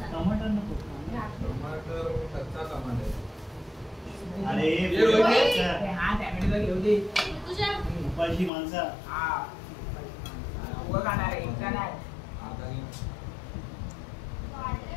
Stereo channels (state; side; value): drops out; right; at 8.5 s